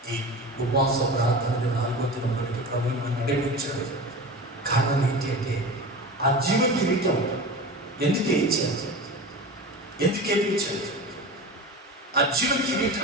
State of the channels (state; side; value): normal; both; correlation 0.31